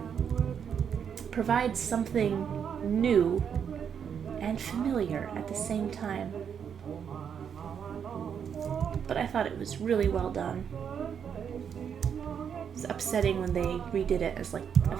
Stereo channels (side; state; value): left; quieter; 7.6 dB